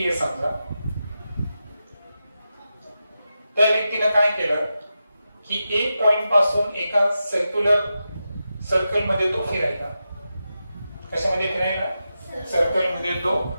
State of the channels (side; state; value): both; inverted; correlation -0.89